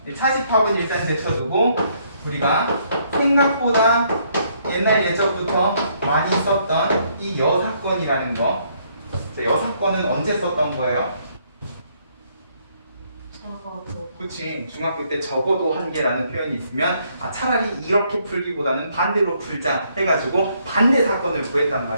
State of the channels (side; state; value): both; inverted; correlation -0.70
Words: 차집합은 일단 제쳐두고 우리가 생각보다 옛날 예적부터 많이 썼던 이 여사건이라는 거, 여사건은 언제 썼던 거예요? 적어도. 그치, 중학교 때 적어도 한 개라는 표현이 있으면 아, 차라리 이렇게 풀기보다는 반대로 풀자 해가지고 반대 사건을 구했단